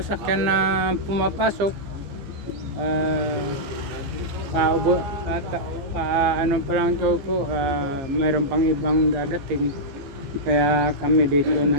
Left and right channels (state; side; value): late; left; 15 ms